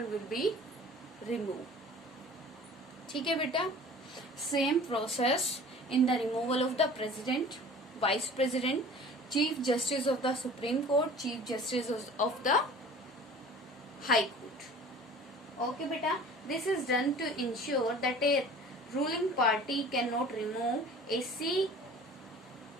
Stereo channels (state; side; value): normal; both; correlation 0.44